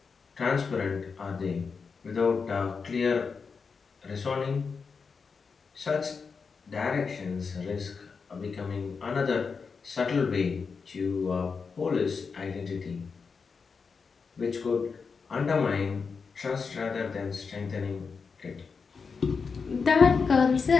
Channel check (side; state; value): right; quieter; 5.3 dB